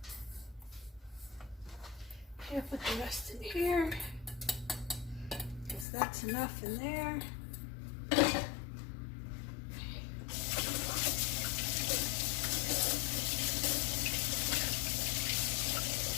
Here, put the rest in here, because that's enough in there. Okay.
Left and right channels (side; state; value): right; drops out; at 5.9 s